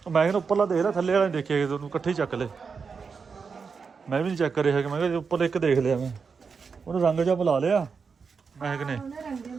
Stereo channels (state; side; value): quieter; left; 5.5 dB